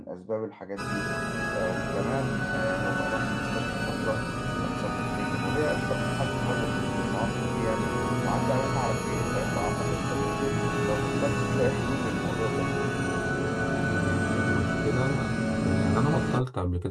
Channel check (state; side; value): identical; both; correlation 1.00